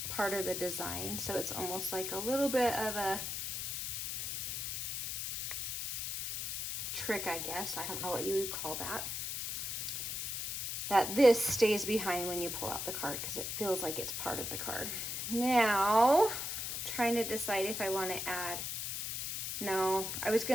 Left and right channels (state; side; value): noise; left; hiss, 3 dB below the sound